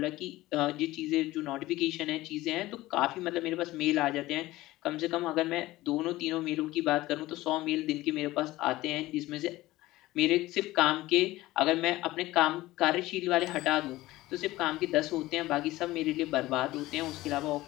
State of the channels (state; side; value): quieter; right; 17.6 dB